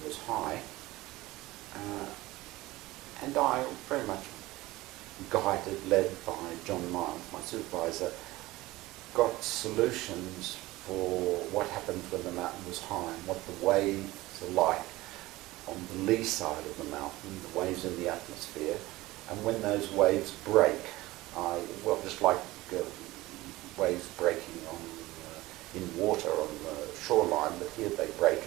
was high, and I, very much guided, led by John Miles, my supervisor, got solutions for what happens when the mountain was high and what the waves are like on the lee side of the mountain, the waves in the atmosphere, and when those waves break, just like waves breaking on in water on the shoreline, but here they break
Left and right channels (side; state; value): left; quieter; 18.9 dB